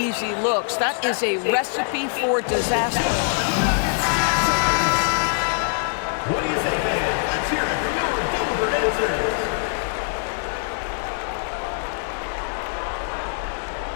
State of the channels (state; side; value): silent; right; digital silence